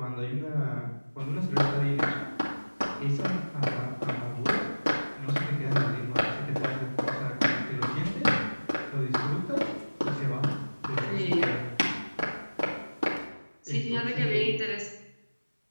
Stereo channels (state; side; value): inverted; both; correlation -1.00